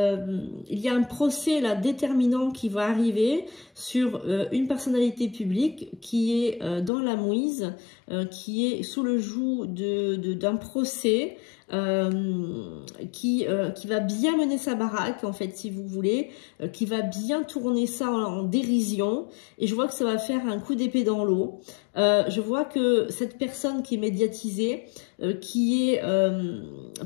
y a un procès là déterminant qui va arriver sur une personnalité publique qui est dans la mouise, qui est sous le joug d'un procès, qui va bien mener sa baraque en fait, si vous voulez, qui va bien tourner ça en dérision. Et je vois que ça va faire un coup d'épée dans l'eau. Je vois que cette personne qui est médiatisée, qui est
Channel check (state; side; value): drops out; right; at 6.9 s